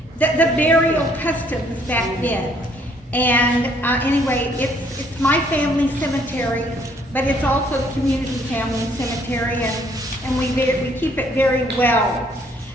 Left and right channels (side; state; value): both; normal; correlation 0.64